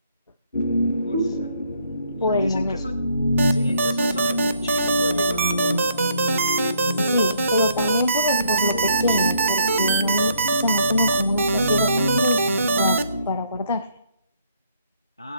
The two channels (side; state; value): both; inverted; correlation -0.69